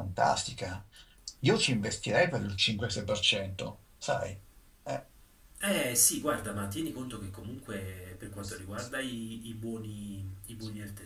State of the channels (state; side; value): identical; both; correlation 1.00